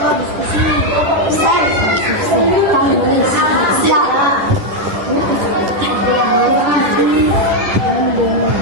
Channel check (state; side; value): late; left; 10 ms